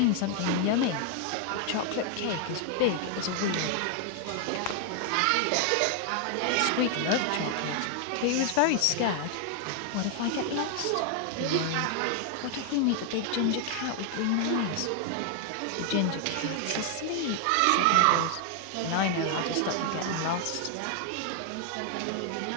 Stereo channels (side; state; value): both; different; correlation 0.00